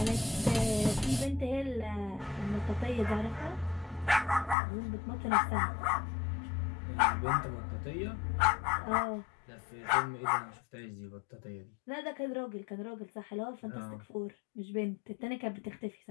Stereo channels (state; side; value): drops out; right; at 4.5 s